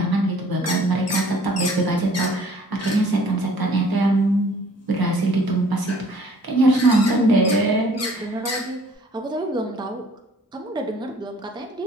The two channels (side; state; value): both; normal; correlation 0.55